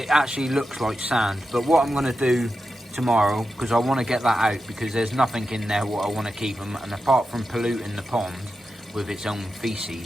actually looks like sand. But what I'm going to do tomorrow, because I want to get that out, because there's nothing in there what I want to keep them, and apart from polluting the pond with its own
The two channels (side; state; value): both; normal; correlation 0.90